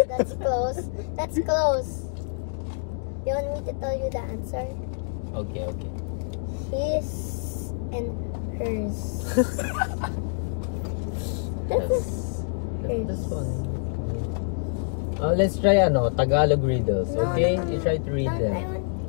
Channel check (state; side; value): silent; right; digital silence